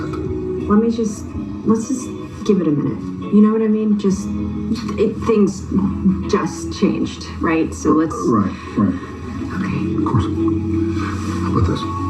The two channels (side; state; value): both; identical; correlation 1.00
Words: Let's just give it a minute. You know what I mean? Things just changed, right? So let's... Right. Okay. Of course. How about this?